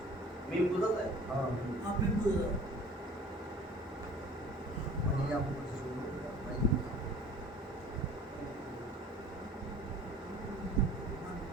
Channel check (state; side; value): normal; both; correlation 0.46